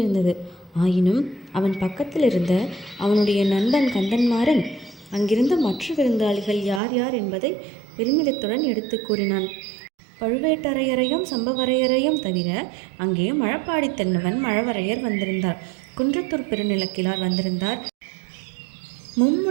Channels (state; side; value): drops out; left; at 6.8 s